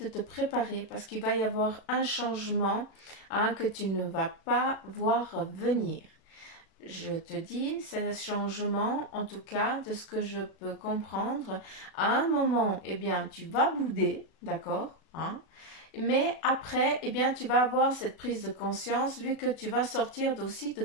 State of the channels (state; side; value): late; right; 36 ms